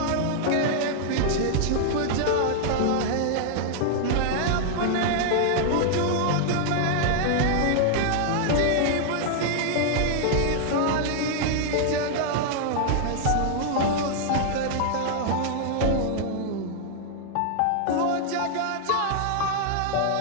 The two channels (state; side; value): different; both; correlation -0.01